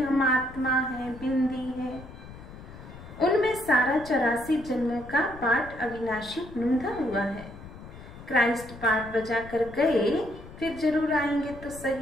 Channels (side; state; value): left; noise; rumble, 16 dB below the sound